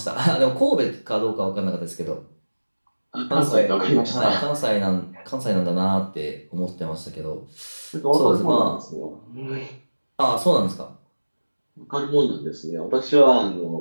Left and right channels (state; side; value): inverted; both; correlation -1.00